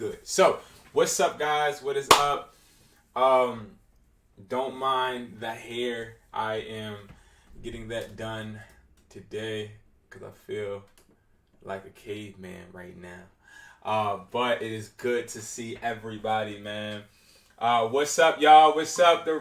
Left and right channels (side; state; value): both; identical; correlation 1.00